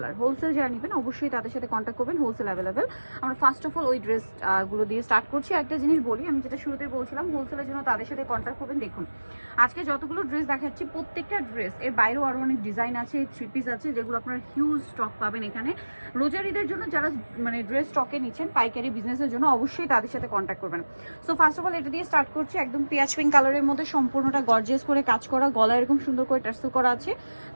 যারা নেবেন অবশ্যই তাদের সাথে কন্ট্যাক্ট করবেন, হোলসেল অ্যাভেলেবেল। আমরা ফার্স্ট অফ অল ওই ড্রেস গুলো দিয়ে স্টার্ট করছি। একটা জিনিস বলি, আমি যেটা শুরুতে বলছিলাম, হোলসেলের জন্য তাদের সাথে কন্ট্যাক্ট করবেন। দেখুন আজকে যতগুলো ড্রেস দেখাচ্ছি প্রত্যেকটা ড্রেস এর বাইরেও আরও অনেক ডিজাইন আছে, থ্রি পিস আছে, যেগুলো আপনার হিউজ স্টক পাবেন এখানে। রোজার ঈদের জন্য যারা ড্রেস স্টকে নিচ্ছেন পাইকারি বিজনেসের জন্য অবশ্যই তাদের সাথে কন্ট্যাক্ট করবেন। সো ফার্স্ট অফ অল এটা দিয়ে স্টার্ট করছি। একদম পেঁয়াজ পিঙ্ক কালারের মধ্যে সম্পূর্ণটা গর্জিয়াস করে কাজ করা, গলা এরকম সুন্দর করে টার্সেল করা আছে,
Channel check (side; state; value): both; inverted; correlation -1.00